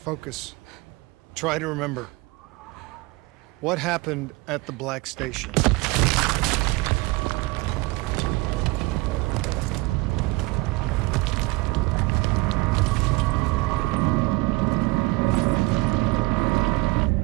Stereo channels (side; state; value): left; quieter; 23.2 dB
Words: Try to remember. What happened at the Black Station?